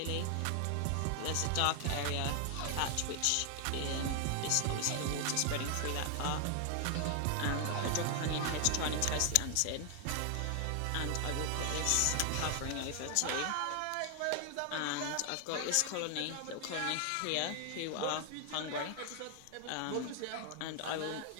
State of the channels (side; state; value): both; different; correlation 0.00